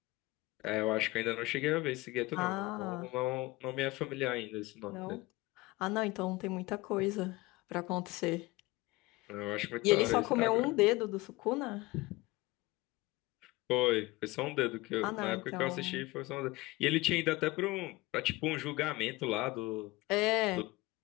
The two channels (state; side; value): quieter; right; 21.2 dB